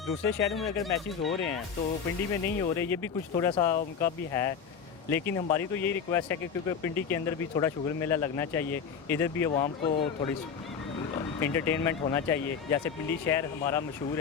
दूसरे शहरों में अगर मैचेस हो रहे हैं तो पिंडी में नहीं हो रहे, ये भी कुछ थोड़ा सा उनका भी है। लेकिन हमारी तो यही रिक्वेस्ट है कि क्योंकि पिंडी के अंदर भी थोड़ा शुगर मेला लगना चाहिए, इधर भी आवाम को थोड़ी इंटरटेनमेंट होना चाहिए। जैसे पिंडी शहर हमारा मशहूर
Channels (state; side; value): quieter; right; 6.7 dB